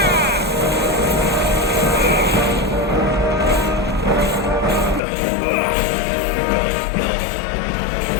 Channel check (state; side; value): drops out; right; at 5.0 s